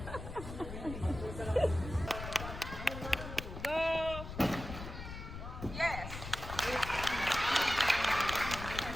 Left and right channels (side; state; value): left; noise; rumble, 9 dB below the sound